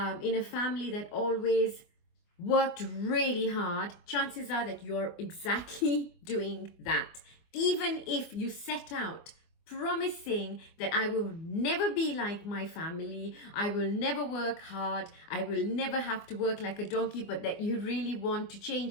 in a family that always worked really hard, chances are that you're exactly doing that. Even if you set out promising that I will never be like my family, I will never work hard, I will never have to work like a donkey, but that you really want to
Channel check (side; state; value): right; late; 24 ms